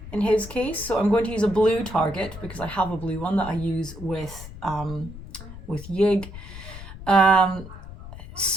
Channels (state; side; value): noise; left; rumble, 13 dB below the sound